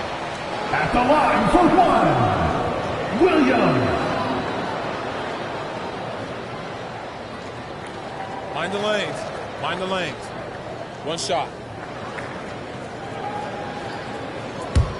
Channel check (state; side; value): identical; both; correlation 1.00